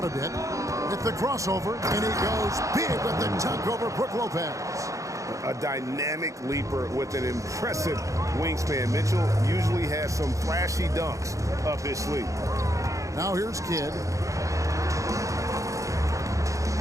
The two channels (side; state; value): left; late; 0.15 ms